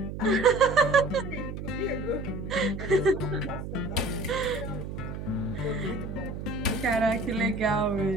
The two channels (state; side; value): noise; right; hum, 7 dB below the sound